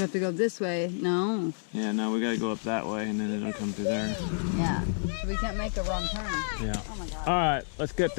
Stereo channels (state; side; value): silent; right; 58 dB below the other